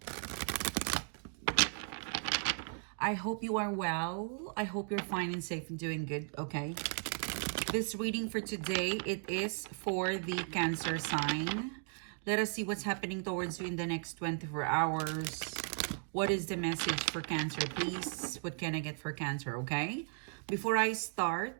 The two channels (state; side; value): silent; left; 54 dB below the other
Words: I hope you are well. I hope you're fine and safe and doing good, okay? This reading for today, it is for the Cancer sign. Let us see what's happening towards you in the next 24 hours. What is the message for Cancer, please? What can I get for Cancer, okay? Before I start,